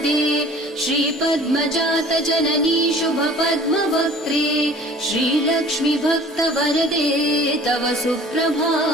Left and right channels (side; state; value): both; normal; correlation 0.48